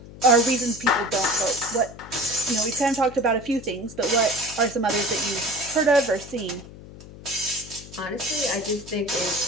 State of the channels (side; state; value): left; noise; hum, 17 dB below the sound